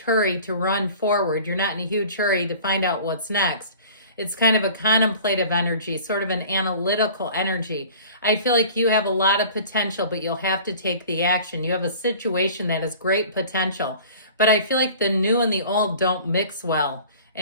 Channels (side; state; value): both; inverted; correlation -0.45